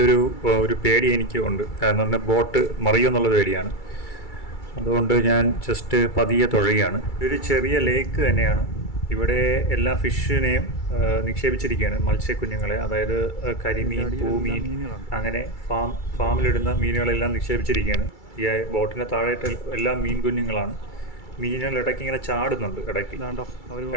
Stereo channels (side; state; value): right; late; 2.3 ms